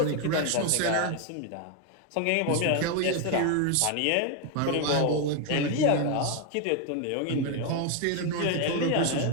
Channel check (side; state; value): both; different; correlation 0.01